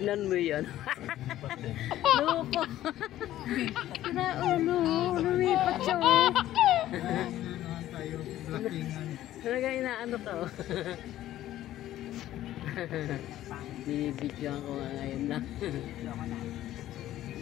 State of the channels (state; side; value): quieter; right; 13.6 dB